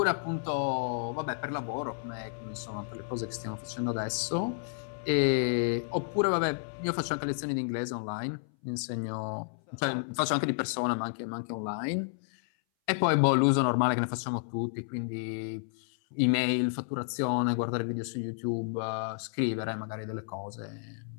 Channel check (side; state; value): right; silent; 57 dB below the other